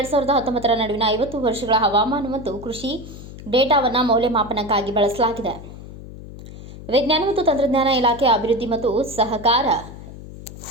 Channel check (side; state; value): left; noise; hum, 14 dB below the sound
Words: ನಡುವಿನ 50 ವರ್ಷಗಳ ಹವಾಮಾನ ಮತ್ತು ಕೃಷಿ ಡೇಟಾವನ್ನು ಮೌಲ್ಯಮಾಪನಕ್ಕಾಗಿ ಬಳಸಲಾಗಿದೆ. ವಿಜ್ಞಾನ ಮತ್ತು ತಂತ್ರಜ್ಞಾನ ಇಲಾಖೆ, ಅಭಿವೃದ್ಧಿ ಮತ್ತು ಸಹಕಾರ,